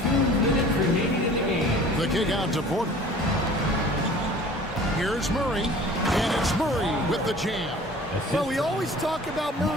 minutes remaining in the game. The kick out to Porter. Here's Murray. And it's Murray with the jam. Well, we always talk about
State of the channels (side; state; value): both; normal; correlation 0.46